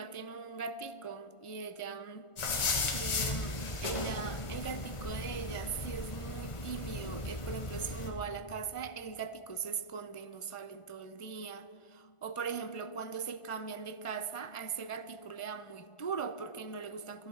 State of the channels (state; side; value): late; right; 1.4 ms